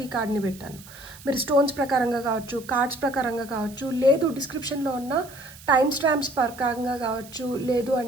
ఈ కార్డ్ని పెట్టాను. మీరు స్టోన్స్ ప్రకారంగా కావచ్చు, కార్డ్స్ ప్రకారంగా కావచ్చు, లేదు డిస్క్రిప్షన్లో ఉన్న టైం స్టాంప్స్ ప్రకారంగా కావచ్చు, లేదు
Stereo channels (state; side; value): noise; right; hiss, 19 dB below the sound